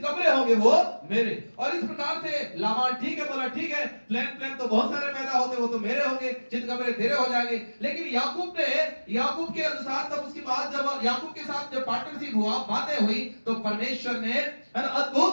होंगे वो मेरे। और इस प्रकार से लाबान ठीक है बोला, ठीक है, प्लेन तो बहुत सारे पैदा होते, वो तो मेरे होंगे, चितकबरे तेरे हो जाएंगे। लेकिन याकूब के अनुसार तब उसके बाद जब याकूब के साथ जब पार्टनरशिप हुआ, बातें हुई, तो परमेश्वर ने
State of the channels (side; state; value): both; inverted; correlation -1.00